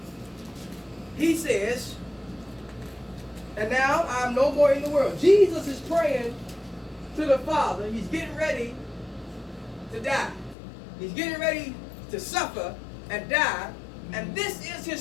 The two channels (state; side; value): drops out; right; at 10.6 s